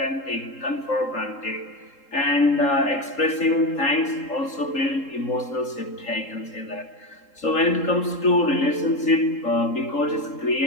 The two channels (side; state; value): right; late; 3.8 ms